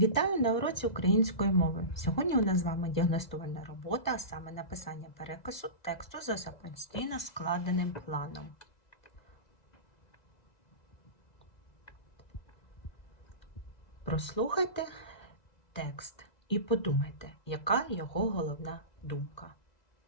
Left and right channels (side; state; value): right; late; 1.9 ms